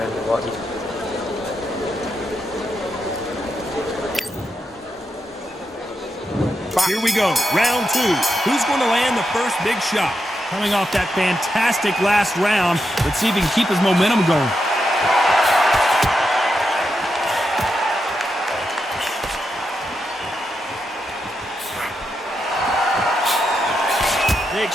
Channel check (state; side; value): normal; both; correlation 0.85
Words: what you. Here we go, round two. Who's going to land the first big shot? Coming off that fantastic last round, let's see if he can keep his momentum going. They